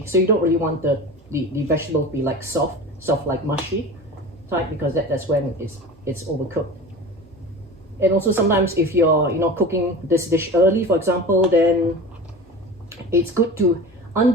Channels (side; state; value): both; normal; correlation 0.33